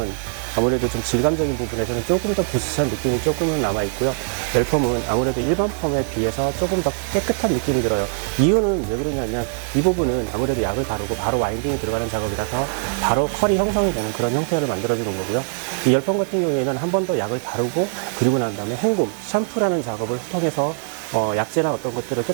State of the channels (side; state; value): left; silent; digital silence